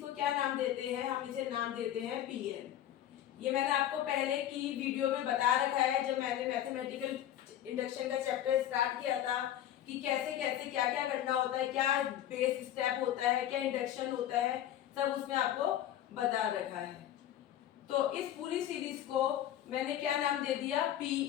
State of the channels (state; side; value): quieter; right; 11.7 dB